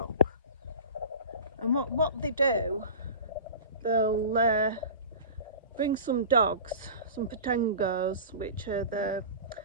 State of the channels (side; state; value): both; inverted; correlation -0.35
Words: and what they do, they'll bring some dogs, some patengos, which are the